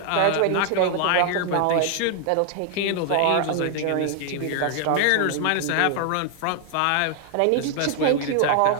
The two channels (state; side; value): different; both; correlation 0.00